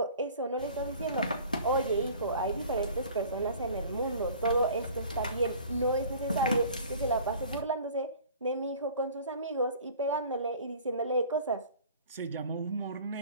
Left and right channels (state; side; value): inverted; both; correlation -0.47